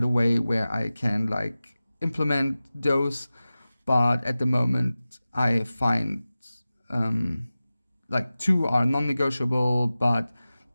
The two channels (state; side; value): inverted; both; correlation -0.96